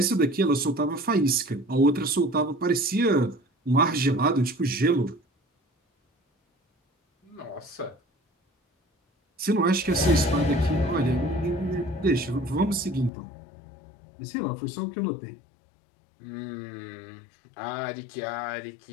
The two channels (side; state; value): right; drops out; at 13.1 s